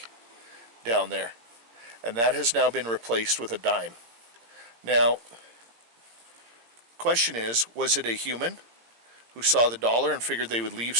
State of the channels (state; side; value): late; left; 17 ms